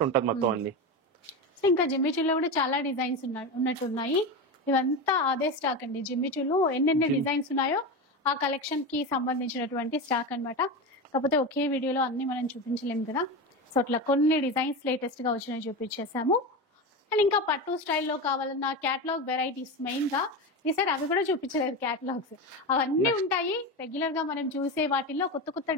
ఉంటుంది మొత్తం అన్ని. ఇంకా జిమ్మిచూలో కూడా చాలా డిజైన్స్ ఉన్నట్టున్నాయి. ఇవంతా అదే స్టాక్ అండి. జిమ్మిచూలో ఎన్నెన్ని డిజైన్స్ ఉన్నాయో ఆ కలెక్షన్ కి సంబంధించినటువంటి స్టాక్ అన్నమాట. కాకపోతే ఒకే వీడియోలో అన్ని మనం చూపించలేము కదా, సో అట్లా కొన్ని డిజైన్స్ లేటెస్ట్ గా వచ్చినాయి చూపించేసాము. అండ్ ఇంకా పట్టు స్టైల్లో కావాలన్న క్యాటలాగ్ వెరైటీస్ మెయిన్ గా ఈసారి అవి కూడా చూపించలేదు. క్యాటలాగ్స్ అవన్నీ ఉంటాయి. రెగ్యులర్ గా మనం చూసే వాటిల్లో కొత్త కొత్త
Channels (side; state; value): both; normal; correlation 0.20